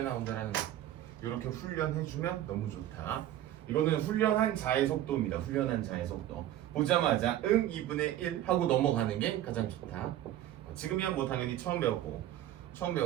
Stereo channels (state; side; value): quieter; left; 12.8 dB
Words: 나온다라는 거. 이렇게 훈련해주면 너무 좋다. 이거는 훈련한 자의 속도입니다. 훈련한 자의 속도. 보자마자 2분의 1 하고 넘어가는 게 가장 좋다. 지금이야 뭐 당연히 처음 배웠지만